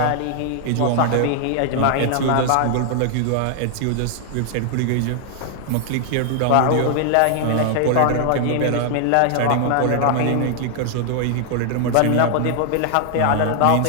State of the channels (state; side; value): different; both; correlation 0.00